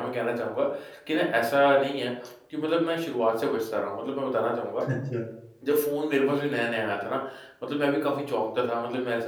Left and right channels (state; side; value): identical; both; correlation 1.00